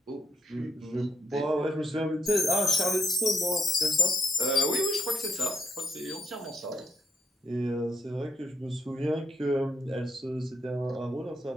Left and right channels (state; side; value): normal; both; correlation 0.74